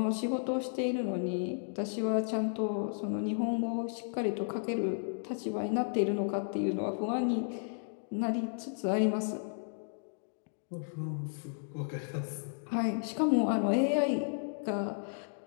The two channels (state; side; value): silent; right; digital silence